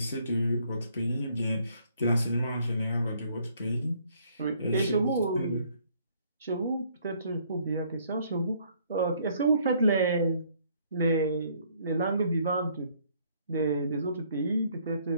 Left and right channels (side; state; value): both; inverted; correlation -0.64